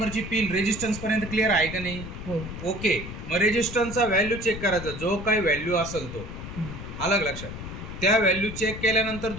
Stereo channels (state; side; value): noise; left; rumble, 9 dB below the sound